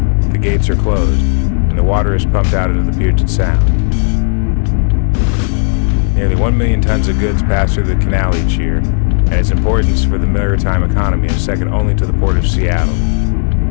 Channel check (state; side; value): silent; right; digital silence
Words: the gates are closed, and the water is pumped out into the Puget Sound. Nearly 1 million tons of goods pass through the canal each year, and its importance for the maritime economy is second only to the Port of Seattle.